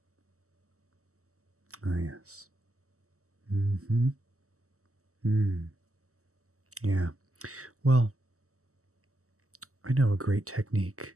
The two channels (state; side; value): late; left; 0.64 ms